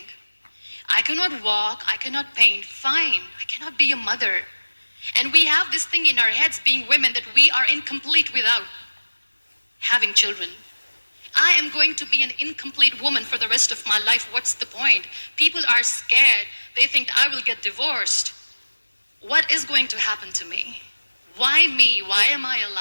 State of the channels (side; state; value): both; inverted; correlation -1.00